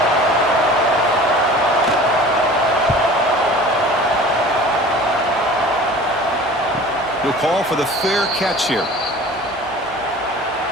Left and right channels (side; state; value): both; normal; correlation 0.42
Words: He'll call for the fair catch here.